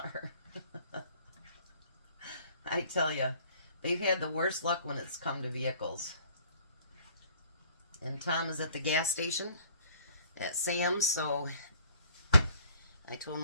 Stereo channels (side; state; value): both; inverted; correlation -0.56